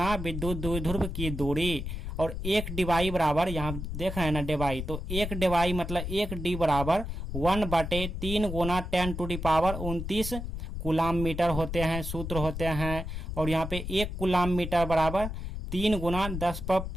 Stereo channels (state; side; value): noise; left; rumble, 5 dB below the sound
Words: विद्युत द्विध्रुव की दूरी, और एक डिवाई बराबर, यहाँ देख रहे हैं ना डिवाई, तो एक डिवाई मतलब एक D बराबर 1/3 गुना 10⁻29 कूलाम मीटर होते हैं, सूत्र होते हैं। और यहाँ पे एक कूलाम मीटर बराबर 3 गुना